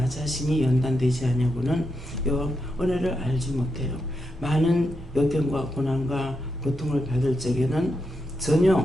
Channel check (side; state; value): both; normal; correlation 0.84